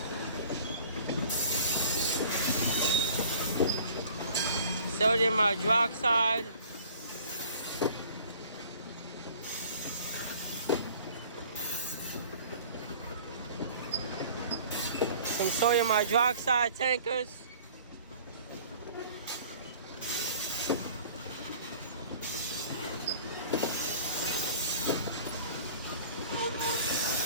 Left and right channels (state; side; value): inverted; both; correlation -0.49